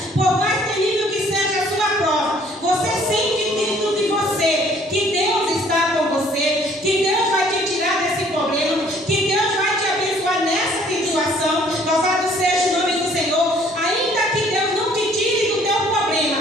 por mais terrível que seja a sua prova, você sente dentro de você que Deus está com você, que Deus vai te tirar desse problema, que Deus vai te abençoar nessa situação. Louvado seja o nome do Senhor. Ainda que Deus não te tire do teu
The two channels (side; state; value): both; normal; correlation 0.59